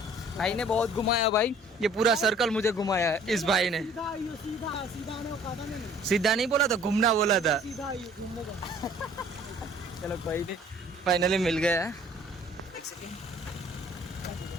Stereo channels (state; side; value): normal; both; correlation 0.54